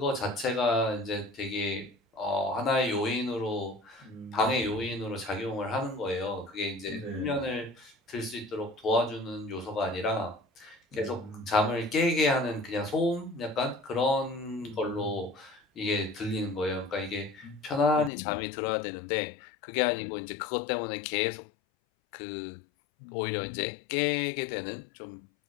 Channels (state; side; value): drops out; right; at 18.1 s